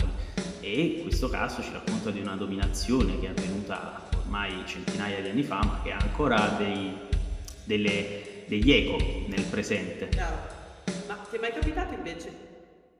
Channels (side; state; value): both; identical; correlation 1.00